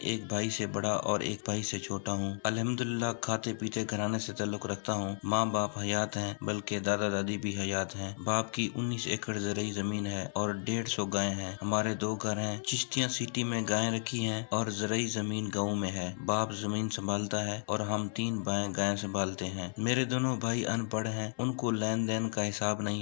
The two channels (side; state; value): right; silent; 56 dB below the other